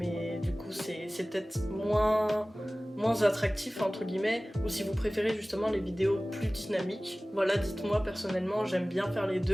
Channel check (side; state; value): both; normal; correlation 0.98